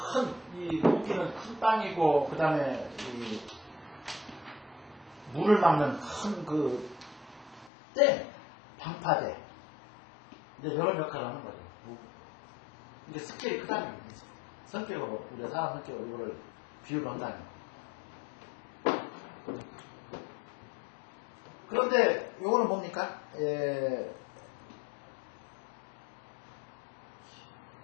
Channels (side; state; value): right; drops out; at 7.7 s